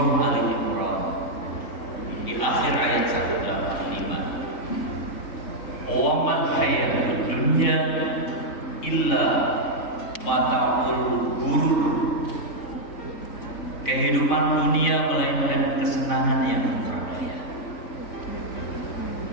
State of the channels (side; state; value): right; late; 3.6 ms